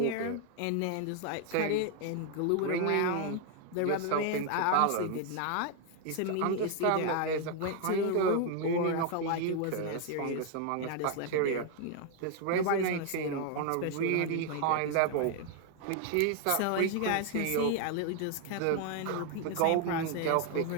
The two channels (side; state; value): both; different; correlation 0.00